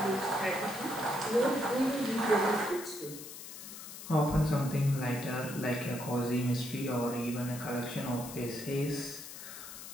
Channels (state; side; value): noise; left; hiss, 12 dB below the sound